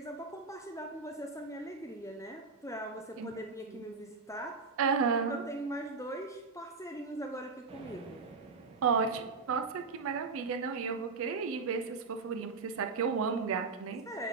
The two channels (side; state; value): left; quieter; 4.6 dB